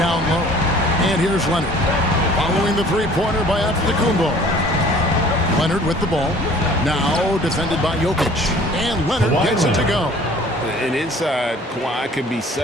low. And here's Leonard. Following the three-pointer by Antetokounmpo. Leonard with the ball. Now defended by Jokic. And Leonard gets it to go. And inside, Kawhi can be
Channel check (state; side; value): normal; both; correlation 0.51